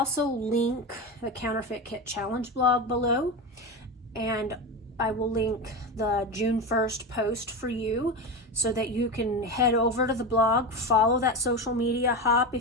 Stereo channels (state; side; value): normal; both; correlation 0.20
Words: link the Counterfeit Kit Challenge blog below, and I will link the June 1st post for you so that you can head over to the blog, follow that social media hop